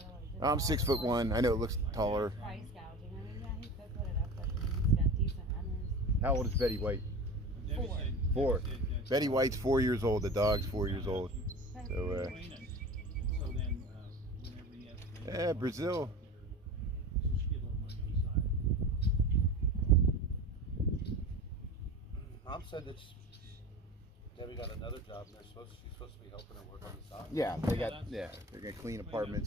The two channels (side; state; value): both; normal; correlation 0.34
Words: of like just I'm 6'1". I know it looks taller. price gouging. I mean, yeah, he could put it up, but he's got decent runners. How old is Betty White? Debbie Four. said- 4. Debbie said that- Betty White's 4 years old. The dog's 4 years old. So Clean it. So then, whenever he has to- yeah, Brazil. So she get a little money on the side. Mom said that Debbie got another job and she's supposed to be helping her work on the side. Yeah, they're gonna clean